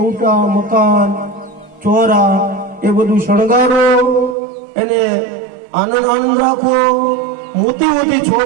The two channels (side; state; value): left; drops out; at 4.4 s